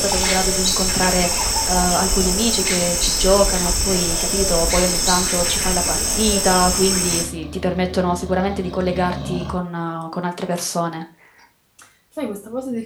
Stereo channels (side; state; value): both; identical; correlation 1.00